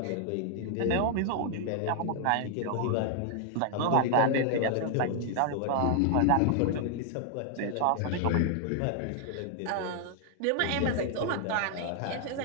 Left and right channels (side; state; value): both; different; correlation 0.00